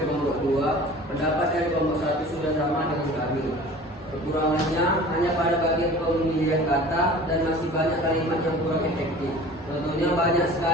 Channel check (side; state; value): both; normal; correlation 0.42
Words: kelompok 2, pendapat dari kelompok 1 sudah sama dengan kami. Kekurangannya hanya pada bagian pemilihan kata dan masih banyak kalimat yang kurang efektif. Contohnya banyak